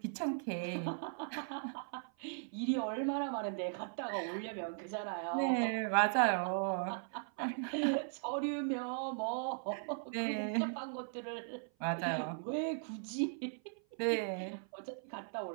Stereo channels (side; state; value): left; silent; 52 dB below the other